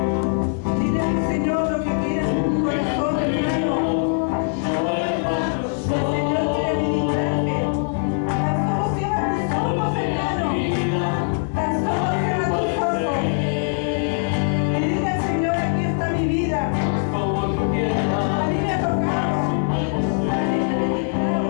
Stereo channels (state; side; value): silent; right; 64 dB below the other